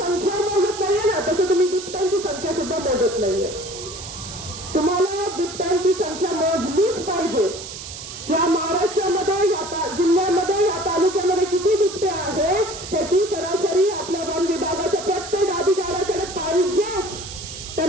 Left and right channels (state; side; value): noise; right; hiss, 11 dB below the sound